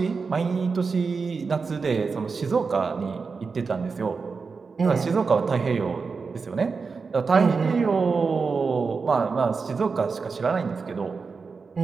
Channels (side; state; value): left; quieter; 4.9 dB